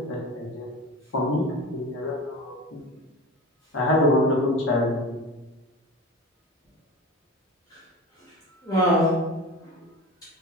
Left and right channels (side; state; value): both; normal; correlation 0.32